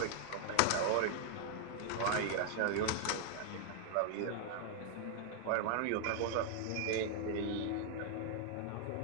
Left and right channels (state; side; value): different; both; correlation 0.00